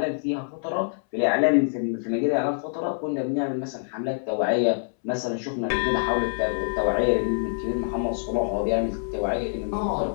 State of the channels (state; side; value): silent; right; 61 dB below the other